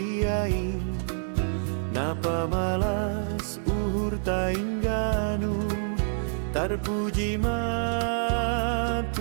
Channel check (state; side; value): silent; left; digital silence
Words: Napa malas uhur taingganu Terpuji ma